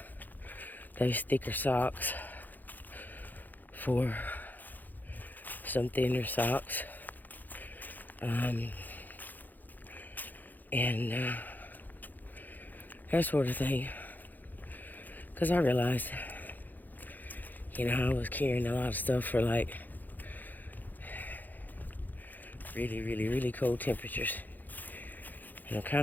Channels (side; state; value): right; late; 0.085 ms